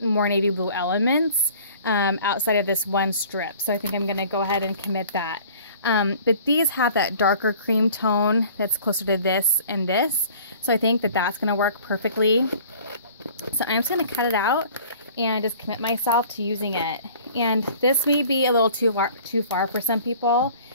navy blue elements outside of this one strip. So I think I'm going to go ahead and commit that. But these have that darker cream tone that's closer to this and this. So I think that that's going to work perfectly. So I'm just going to cut it out and just commit myself to using it. And this may be a little too far for some people.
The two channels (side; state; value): both; inverted; correlation -0.49